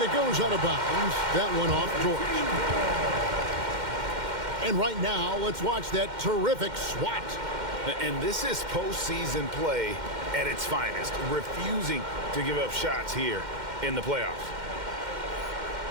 it goes out of bounds. That one off George. And right now, let's watch that terrific swat. And this is postseason play at its finest, refusing to give up shots here in the playoffs.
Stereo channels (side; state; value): left; late; 2.1 ms